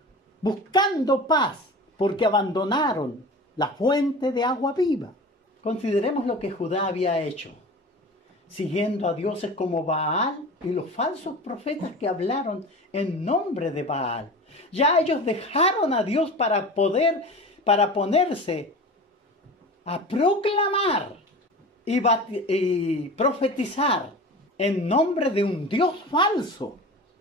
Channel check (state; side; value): normal; both; correlation 0.34